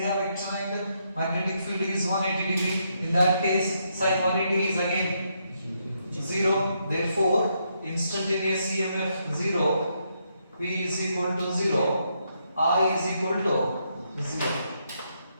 vector and magnetic field is 180 degree. In that case, sin 180 is again 0. Therefore, instantaneous EMF 0, V is equal to 0, I is equal to 0.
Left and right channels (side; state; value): both; inverted; correlation -0.78